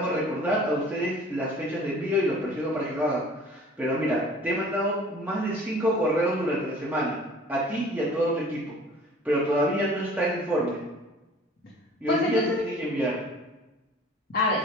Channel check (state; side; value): normal; both; correlation 0.48